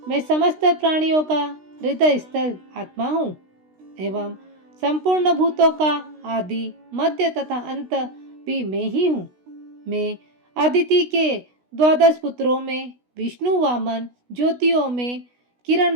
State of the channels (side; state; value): left; late; 16 ms